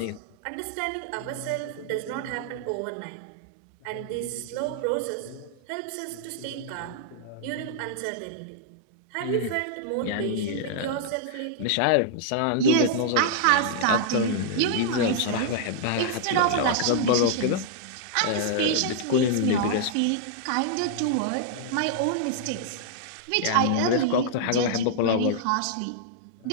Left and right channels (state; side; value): different; both; correlation -0.01